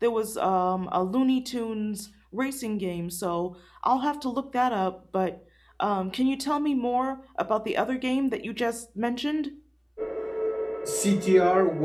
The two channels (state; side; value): identical; both; correlation 1.00